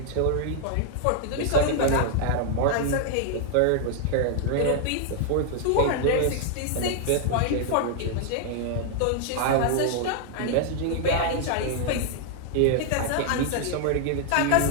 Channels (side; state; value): both; different; correlation 0.00